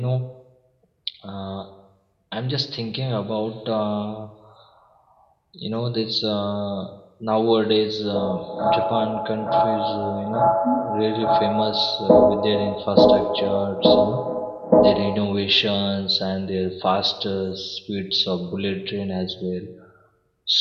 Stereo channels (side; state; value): both; identical; correlation 1.00